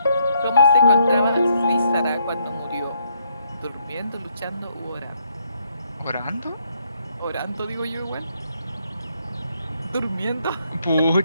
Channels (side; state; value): both; inverted; correlation -0.72